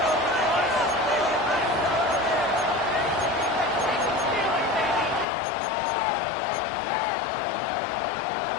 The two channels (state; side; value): drops out; right; at 5.2 s